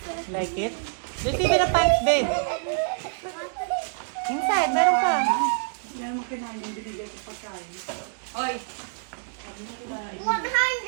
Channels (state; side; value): silent; left; digital silence